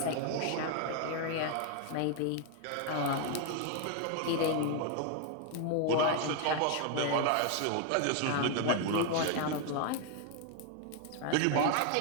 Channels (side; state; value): both; different; correlation 0.01